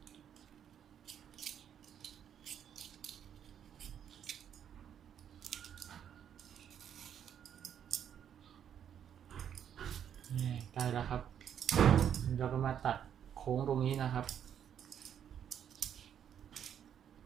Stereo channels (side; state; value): left; quieter; 9.1 dB